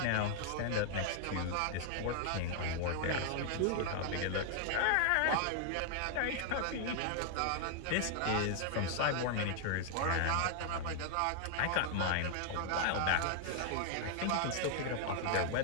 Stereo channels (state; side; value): different; both; correlation 0.00